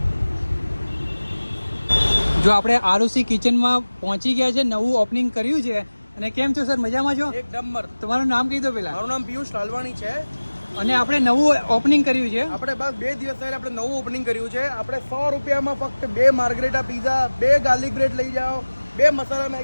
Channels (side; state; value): both; inverted; correlation -1.00